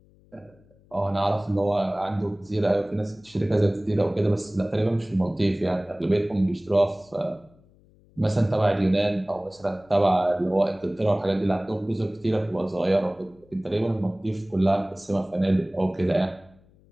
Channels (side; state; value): left; noise; hum, 29 dB below the sound